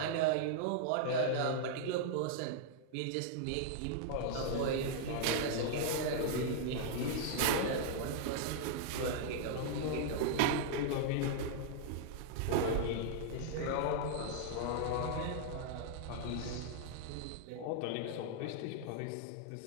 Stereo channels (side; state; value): both; different; correlation -0.01